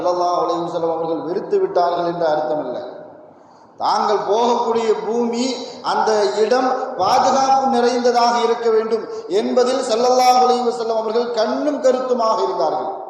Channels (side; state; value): both; identical; correlation 1.00